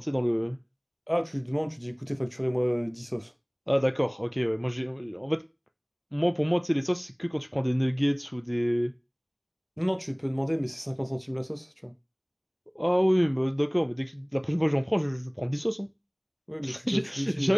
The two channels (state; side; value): identical; both; correlation 1.00